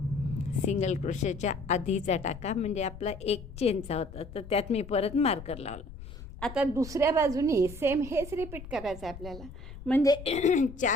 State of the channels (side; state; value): left; noise; rumble, 14 dB below the sound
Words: सिंगल क्रोशेच्या आधीचा टाका म्हणजे आपला एक चेनचा होता, तर त्यात मी परत मार्कर लावलं. आता दुसऱ्या बाजूनी सेम हेच रिपीट करायचं आहे आपल्याला, म्हणजे